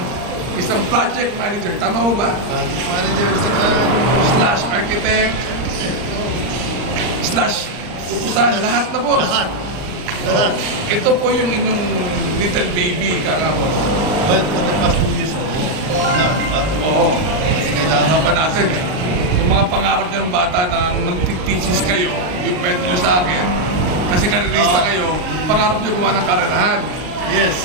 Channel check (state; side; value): late; left; 39 ms